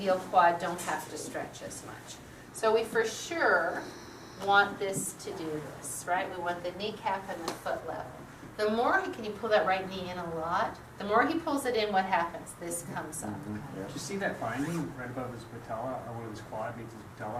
quad don't have to stretch as much. So we for sure want this to do this, right? We want the kneecap and the foot level. The more can you pull that right knee in a lot? The more he pulls it in, what happens? This comes up. Did you see that finding right above his patella, or one of his quad meets his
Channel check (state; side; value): identical; both; correlation 1.00